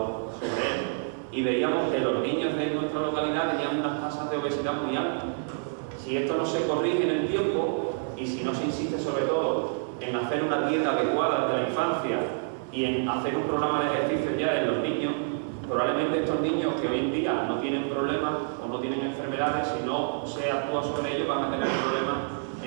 sobre él, y veíamos que los niños de nuestra localidad tenían unas tasas de obesidad muy altas. Si esto no se corrige en el tiempo, y si no se insiste sobre todo en hacer una dieta adecuada desde la infancia y en hacer un programa de ejercicio ya en los niños, probablemente estos niños que hoy en día no tienen problemas o no tienen enfermedades, si no se actúa sobre ellos, van a tener problemas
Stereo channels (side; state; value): left; silent; digital silence